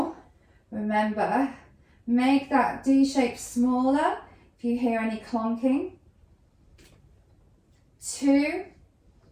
Remember, make that D shape smaller if you hear any clonking. 2.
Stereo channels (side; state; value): both; identical; correlation 1.00